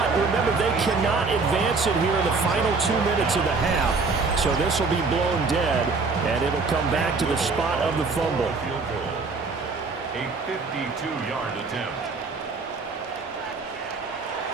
remember, they cannot advance it here in the final 2 minutes of the half. So this will be blown dead, and it'll come back to the spot of the fumble. A 52-yard attempt.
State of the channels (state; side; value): quieter; left; 4.2 dB